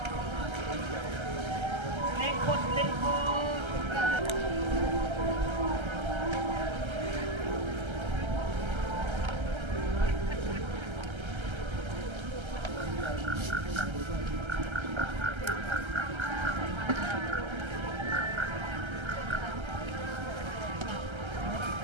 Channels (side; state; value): left; late; 1.3 ms